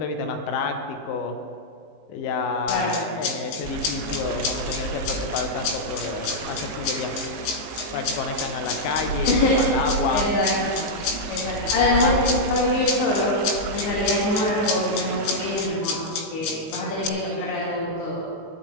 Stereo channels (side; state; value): right; late; 19 ms